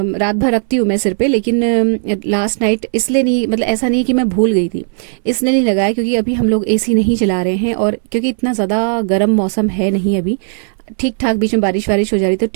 रात भर रखती हूँ मैं सिर पे, लेकिन लास्ट नाइट इसलिए नहीं, मतलब ऐसा नहीं कि मैं भूल गई थी, इसलिए नहीं लगाया क्योंकि अभी हम लोग एसी नहीं चला रहे हैं, और क्योंकि इतना ज़्यादा गर्म मौसम है नहीं अभी, ठीक ठाक बीच में बारिश वारिश हो जा रही तो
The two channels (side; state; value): left; silent; 63 dB below the other